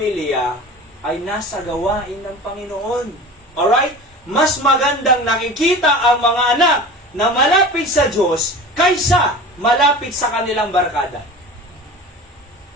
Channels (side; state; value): both; normal; correlation 0.35